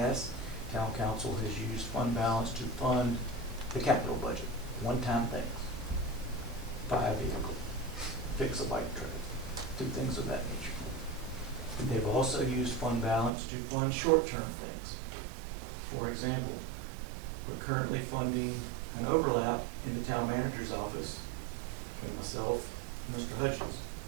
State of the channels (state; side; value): drops out; left; at 13.3 s